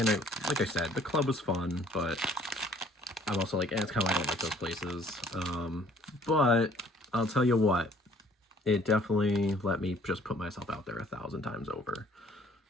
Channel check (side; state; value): both; normal; correlation 0.58